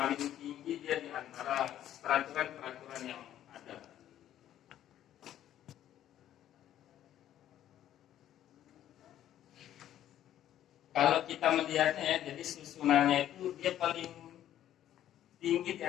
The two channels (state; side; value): quieter; right; 11.7 dB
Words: tinggi dia di antara peraturan-peraturan yang ada. Kalau kita melihatnya ya, jadi susunannya itu dia paling tinggi di